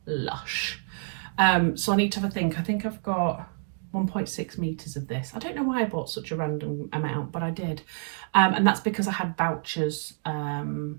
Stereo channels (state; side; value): silent; left; digital silence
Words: lush. So I need to have a think. I think I've got 1.6 meters of this. I don't know why I bought such a random amount, but I did. And that's because I had vouchers